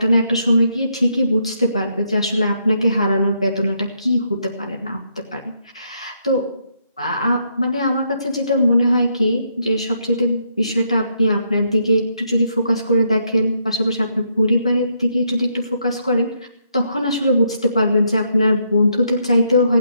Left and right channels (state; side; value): inverted; both; correlation -0.75